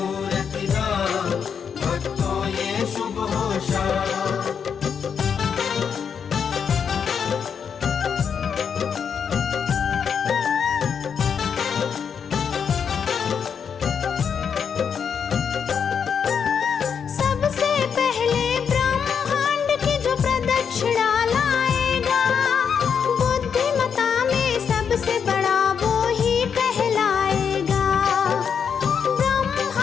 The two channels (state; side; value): quieter; right; 7.0 dB